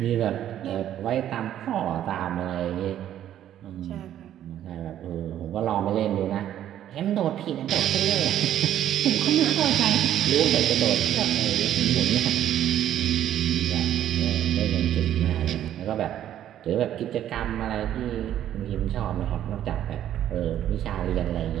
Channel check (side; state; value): left; quieter; 11.3 dB